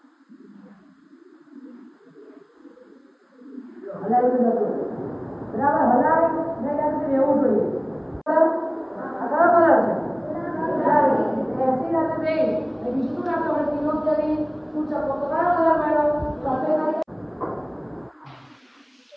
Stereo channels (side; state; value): both; identical; correlation 1.00